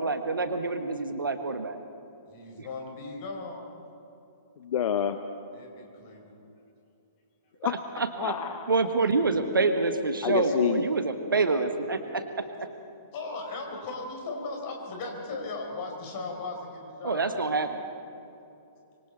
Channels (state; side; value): inverted; both; correlation -0.48